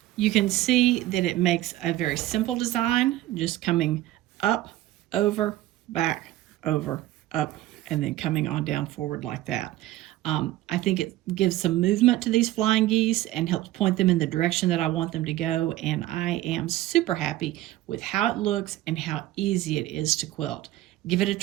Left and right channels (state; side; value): quieter; left; 15.5 dB